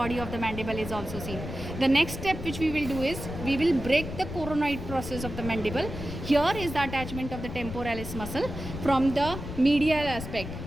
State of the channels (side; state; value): left; noise; rumble, 8 dB below the sound